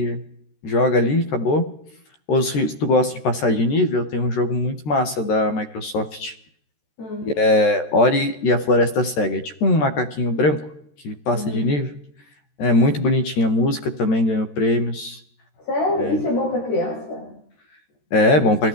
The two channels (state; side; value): late; right; 13 ms